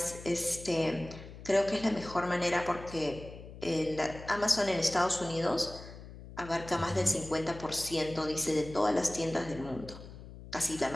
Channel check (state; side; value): noise; left; hum, 15 dB below the sound